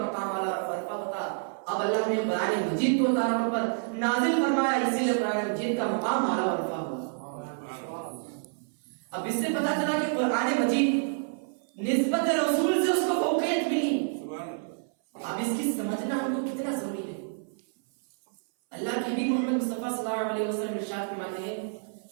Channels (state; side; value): silent; left; 59 dB below the other